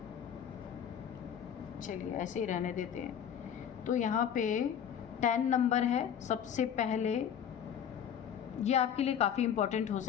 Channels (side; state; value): right; quieter; 8.7 dB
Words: चलिए ऐसे ही रहने देते हैं। तो यहाँ पे 10 नंबर है सबसे पहले, ये आपके लिए काफ़ी इम्पोर्टेंट हो